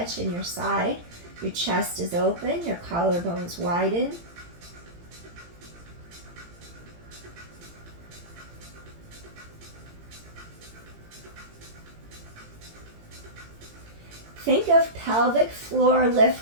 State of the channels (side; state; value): left; late; 18 ms